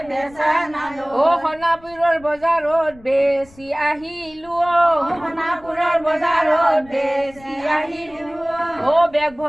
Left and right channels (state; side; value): noise; left; rumble, 24 dB below the sound